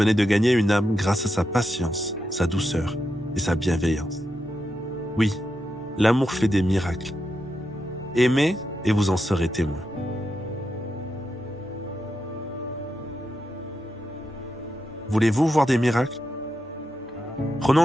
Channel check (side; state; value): both; normal; correlation 0.86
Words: de gagner une âme grâce à sa patience, sa douceur et sa bienveillance. Oui, l'amour fait des miracles. Aimez et vous en serez témoin. Voulez-vous voir des miracles?